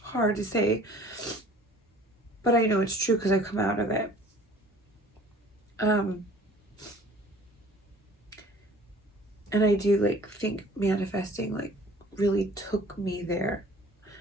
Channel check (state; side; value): normal; both; correlation 0.50